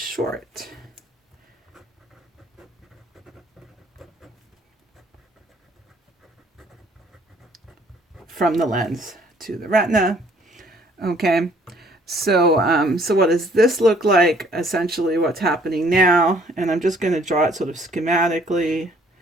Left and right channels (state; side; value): normal; both; correlation 0.60